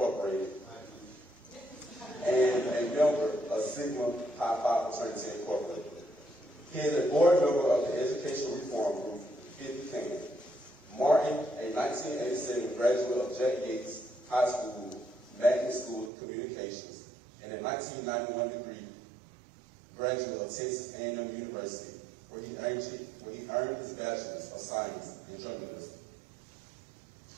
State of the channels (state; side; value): drops out; left; at 16.1 s